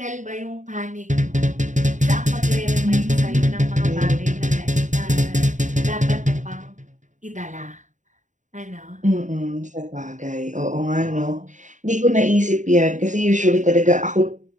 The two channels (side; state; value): left; late; 0.36 ms